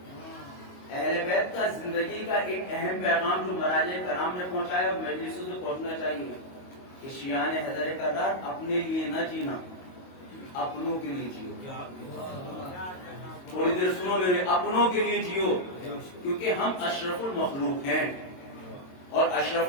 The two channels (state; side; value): late; right; 22 ms